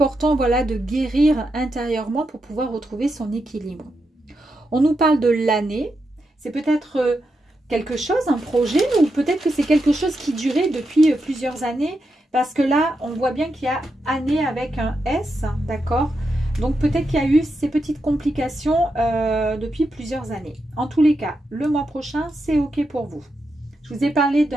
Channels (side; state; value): both; normal; correlation 0.85